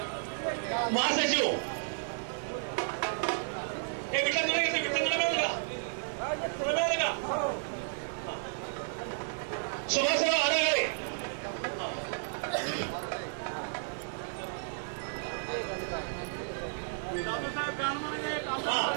महासचिव. हे विठ्ठल तुला मिळालं का? तुला मिळालं का? सुभाषराव आडगळे,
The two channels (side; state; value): left; silent; 56 dB below the other